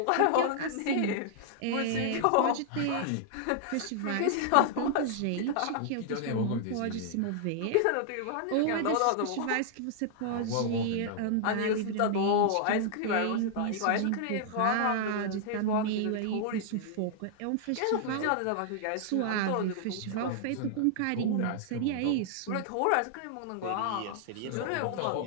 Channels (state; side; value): different; both; correlation -0.01